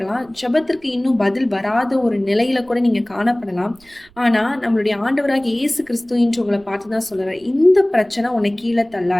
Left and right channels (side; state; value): right; noise; rumble, 30 dB below the sound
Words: ஜெபத்திற்கு இன்னும் பதில் வராத ஒரு நிலையில கூட நீங்க காணப்படலாம். ஆனா நம்மளுடைய ஆண்டவராக இயேசு கிறிஸ்து இன்று உங்களை பார்த்துதான் சொல்றாரு, இந்த பிரச்சனை உன்னை கீழே